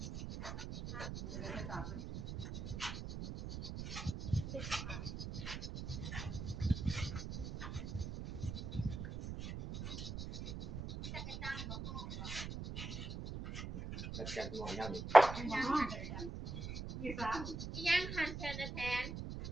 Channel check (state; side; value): noise; right; rumble, 6 dB below the sound